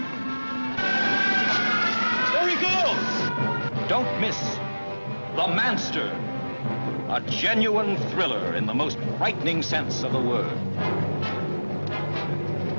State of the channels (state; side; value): inverted; both; correlation -1.00